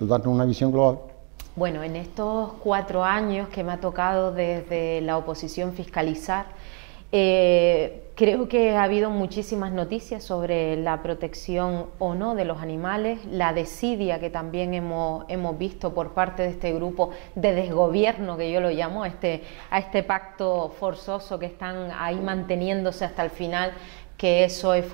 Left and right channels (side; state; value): left; quieter; 36.9 dB